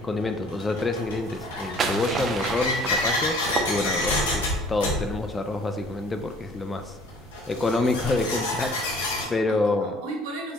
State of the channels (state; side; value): normal; both; correlation 0.54